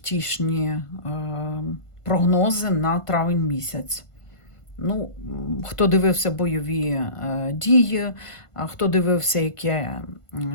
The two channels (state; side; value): late; right; 1.5 ms